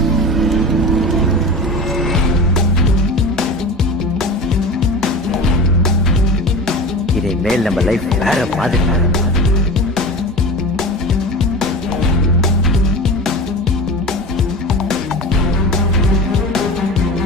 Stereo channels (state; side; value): normal; both; correlation 0.31